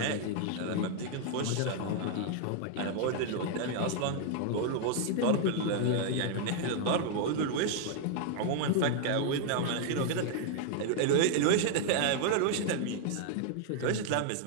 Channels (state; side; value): different; both; correlation 0.00